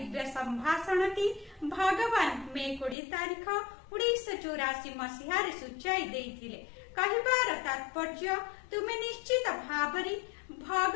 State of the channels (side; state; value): right; drops out; at 3.0 s